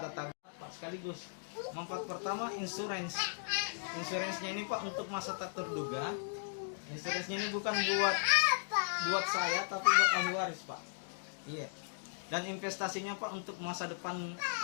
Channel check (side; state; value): right; silent; digital silence